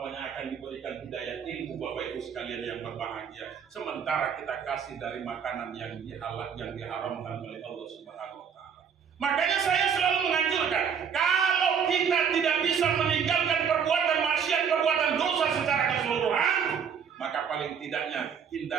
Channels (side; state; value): left; quieter; 7.2 dB